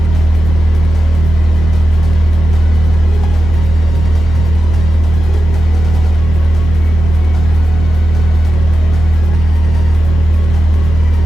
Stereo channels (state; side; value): normal; both; correlation 0.90